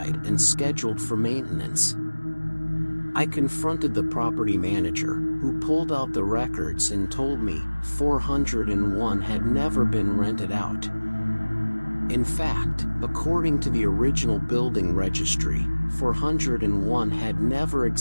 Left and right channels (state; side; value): inverted; both; correlation -1.00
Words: and scheduled for maintenance. I confronted the property manager, who pulled out the records and told me 401 had never been rented out. In fact, according to the original building registry, 401 had never